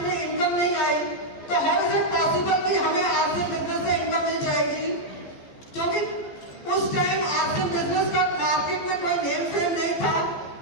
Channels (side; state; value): right; late; 15 ms